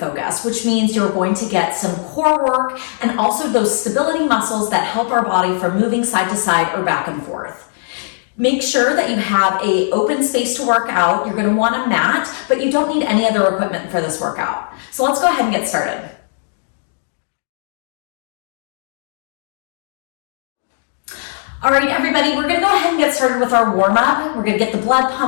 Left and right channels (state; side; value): silent; right; digital silence